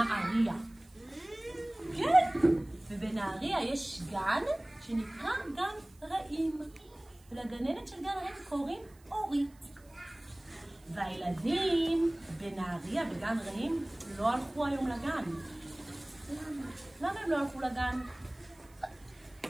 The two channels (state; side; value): noise; right; hiss, 29 dB below the sound